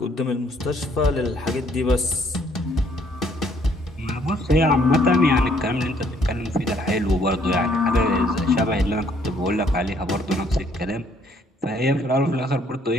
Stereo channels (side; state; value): both; normal; correlation 0.65